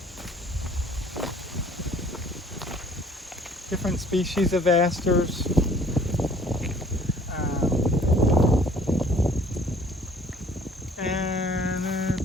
different species of asters.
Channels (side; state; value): both; normal; correlation 0.55